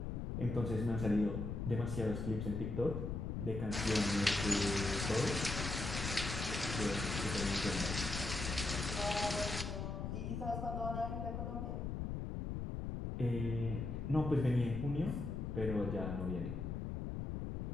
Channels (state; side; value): noise; left; rumble, 3 dB below the sound